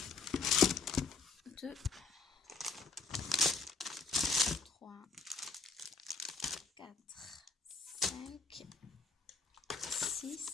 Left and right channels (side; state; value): right; quieter; 4.3 dB